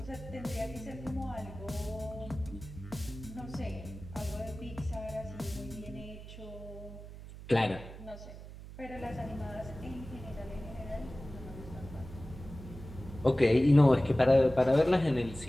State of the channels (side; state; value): right; noise; hum, 14 dB below the sound